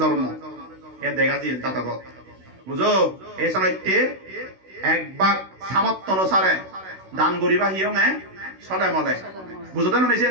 জন্ম এ দেখা যায় জাতকত বুঝো এই সময়তে একবার সামর্থ্য অনুসারে দান করিবা হিয়ং চলে মলে বুঝতে নিছে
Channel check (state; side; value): late; left; 16 ms